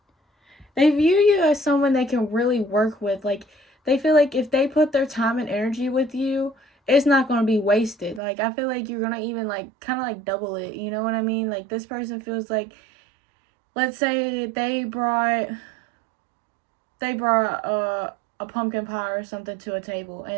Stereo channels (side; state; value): left; drops out; at 8.2 s